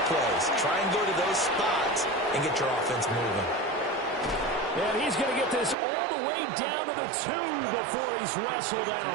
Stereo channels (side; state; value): left; drops out; at 5.8 s